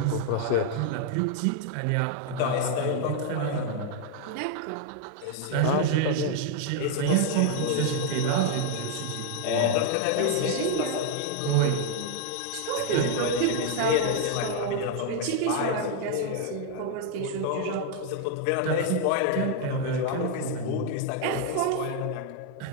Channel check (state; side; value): different; both; correlation 0.00